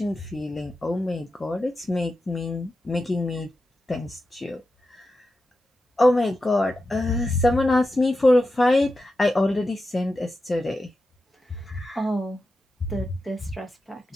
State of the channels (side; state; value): both; normal; correlation 0.90